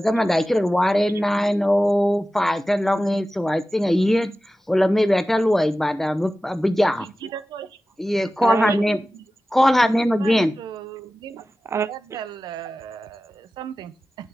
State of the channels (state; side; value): normal; both; correlation 0.95